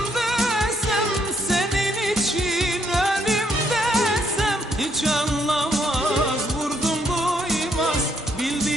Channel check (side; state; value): both; normal; correlation 0.72